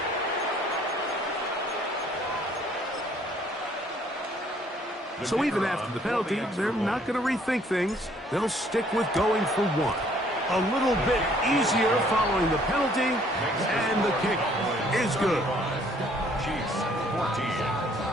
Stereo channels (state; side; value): normal; both; correlation 0.61